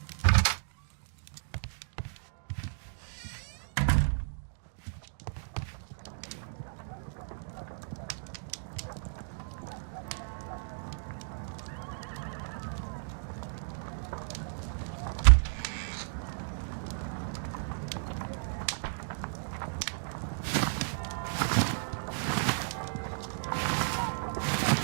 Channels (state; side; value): silent; left; digital silence